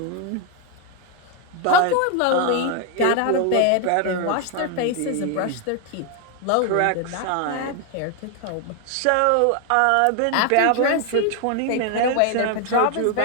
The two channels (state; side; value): different; both; correlation 0.01